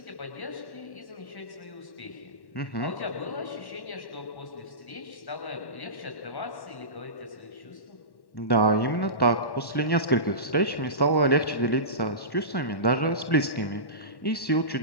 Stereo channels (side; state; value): right; late; 1.1 ms